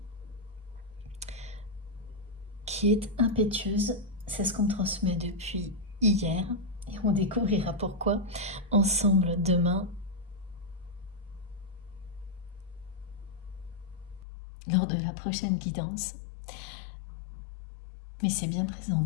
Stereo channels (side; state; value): right; drops out; at 14.2 s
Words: qui est impétueuse, c'est ce qu'on me transmet depuis hier et on découvrira pourquoi ensemble demain lors de la prochaine guidance. Mais c'est bien présent